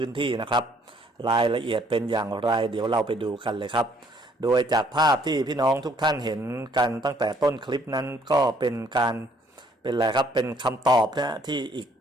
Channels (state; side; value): normal; both; correlation 0.64